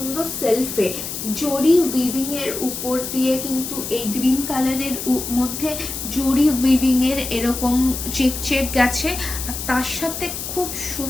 সেলফে জরি উইভিং এর উপর দিয়ে কিন্তু এই গ্রিন কালারের মধ্যে জরি উইভিং এর এরকম চেক চেক গেছে, আর তার সাথে খুব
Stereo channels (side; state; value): left; noise; hiss, 6 dB below the sound